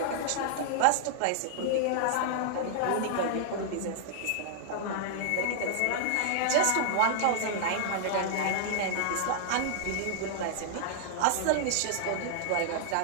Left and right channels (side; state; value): both; different; correlation -0.01